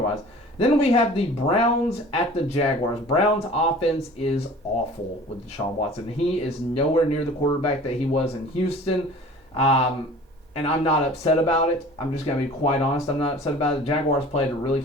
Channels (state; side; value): normal; both; correlation 0.44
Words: Then we have the Browns at the Jaguars. Browns' offense is awful with Deshaun Watson. He is nowhere near the quarterback that he was in Houston. And I'm not upset about it. I'm just going to be quite honest. I'm not upset about it. The Jaguars played a really